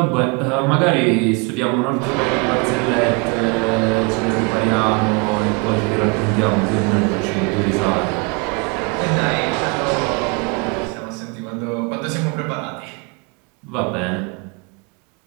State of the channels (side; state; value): left; quieter; 31.1 dB